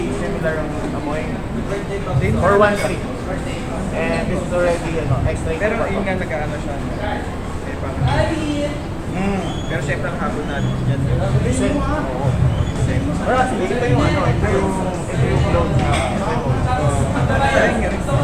similar ang amoy. For 1.3. And this is already extra. Pero yun nga nag-ano siya. Eh, parang, pero syempre ang habol natin dyan. Listen. Oo. Pero actually, ito yung clone.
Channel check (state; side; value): identical; both; correlation 1.00